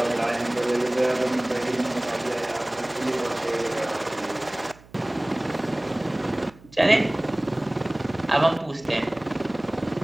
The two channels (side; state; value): right; noise; hum, 24 dB below the sound